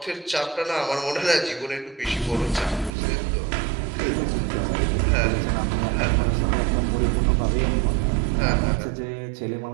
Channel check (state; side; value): drops out; left; at 2.9 s